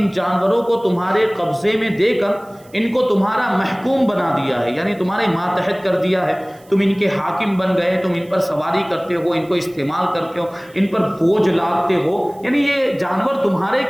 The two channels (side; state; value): right; noise; hiss, 28 dB below the sound